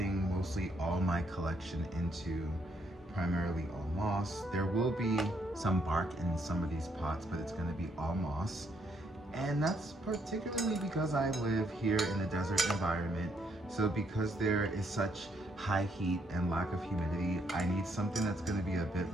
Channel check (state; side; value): normal; both; correlation 0.72